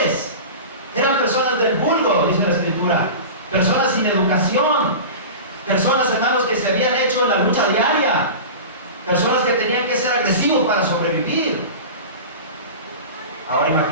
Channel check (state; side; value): inverted; both; correlation -0.31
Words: eran personas del vulgo, dice la Escritura, personas sin educación, personas, hermanos, que se habían hecho en la lucha diaria, personas que tenían que ser agresivos para sobrevivir. Ahora